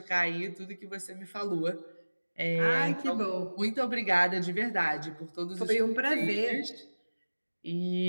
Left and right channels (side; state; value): both; inverted; correlation -1.00